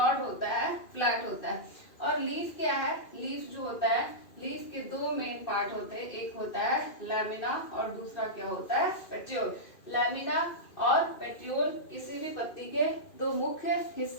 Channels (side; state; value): right; late; 2.5 ms